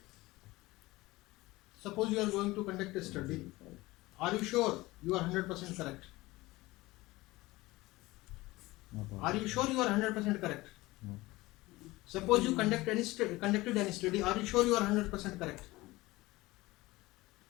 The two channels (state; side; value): quieter; right; 19.9 dB